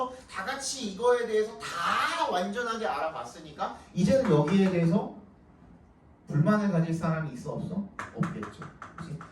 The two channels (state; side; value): identical; both; correlation 1.00